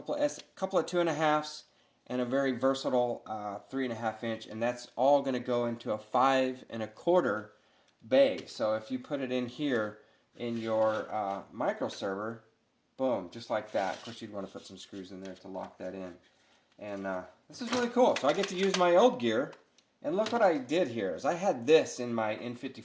of 2.5s and a very versatile 3.5-inch, and that's all going to go into a 5.25 bay. So if you put it in here in your microserver, boom, just like that. Of course, you'd want to put some screws in there to lock that in. And this is really cool. So I get to use my old gear. And look what I did here. Is I had this in my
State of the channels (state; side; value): identical; both; correlation 1.00